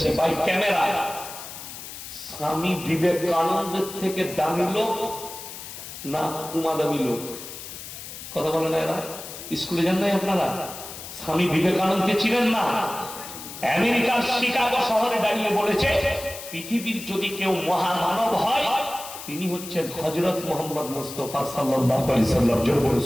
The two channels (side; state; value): left; noise; hiss, 12 dB below the sound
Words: ভাই ক্যামেরা, স্বামী বিবেকানন্দের থেকে দামি লোক না কুমা দামি লোক? কথা বলে না এরা? স্কুলে যান নাই আপনারা? স্বামী বিবেকানন্দকে চিনেন না? আমেরিকার শিকাগো শহরে দাঁড়িয়ে বলেছে, পৃথিবীর যদি কেউ মহামানব হয় তিনি হচ্ছেন হযরত মুহাম্মদ মুস্তাফা সাল্লাল্লাহু আলাইহি সাল্লাম। জোরে বলে